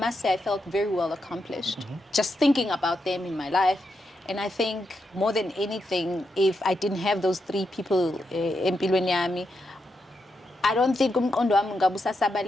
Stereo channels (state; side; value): normal; both; correlation 0.84